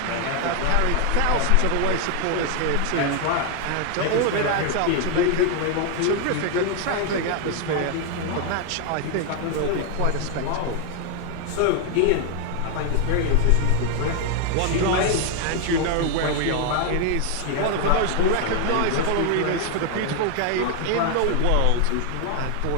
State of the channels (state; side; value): different; both; correlation 0.01